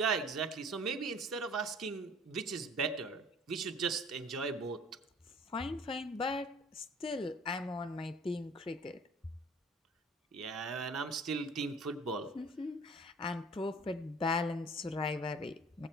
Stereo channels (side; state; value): both; normal; correlation 0.49